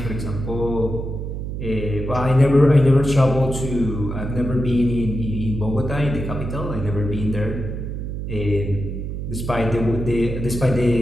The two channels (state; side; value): noise; right; hum, 5 dB below the sound